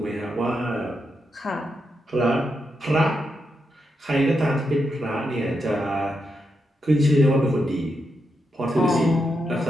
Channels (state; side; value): normal; both; correlation 0.84